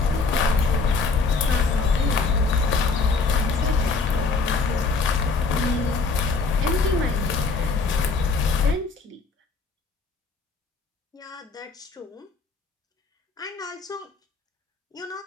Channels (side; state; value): right; quieter; 4.3 dB